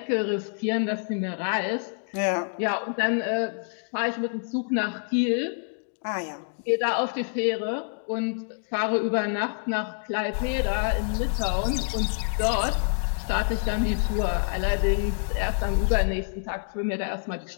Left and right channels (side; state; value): right; silent; digital silence